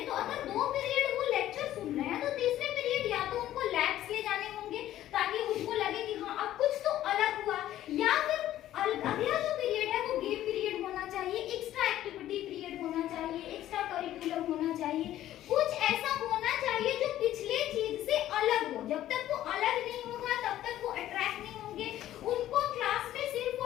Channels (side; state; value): right; quieter; 13.1 dB